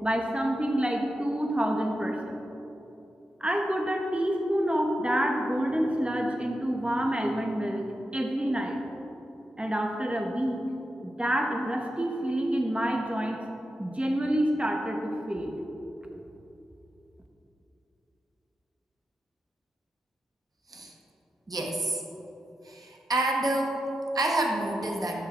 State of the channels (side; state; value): both; normal; correlation 0.89